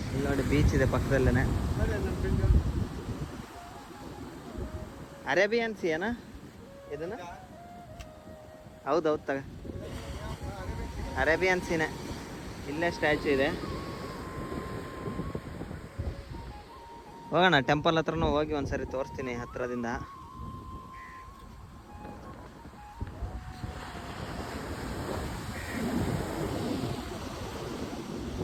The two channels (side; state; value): both; identical; correlation 1.00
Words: ಇಲ್ಲಿ ನೋಡಿ ಬೀಚ್ ಇದೆ ಪಕ್ಕದಲ್ಲೇ. ಅರೇಬಿಯನ್ ಸಿ ಏನಾ ಇದನ್ನು? ಹೌದೌದು ತಗ, ಅರೇಬಿಯನ್ ಸೀನೆ. ಇಲ್ಲೇ ಸ್ಟ್ಯಾಚು ಇದೆ. ಹೋಗೋಣ ಟೆಂಪಲ್ ಹತ್ರನೂ ಹೋಗಿ ಒಂದ್ಸರಿ ತೋರಿಸ್ತೀನಿ ಹತ್ರದಿಂದ.